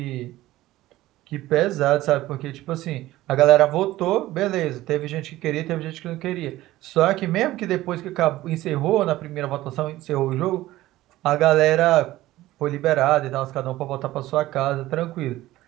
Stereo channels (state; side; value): quieter; left; 16.3 dB